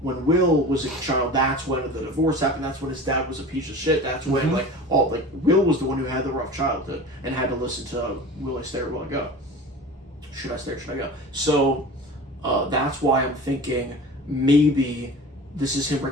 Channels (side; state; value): both; normal; correlation 0.37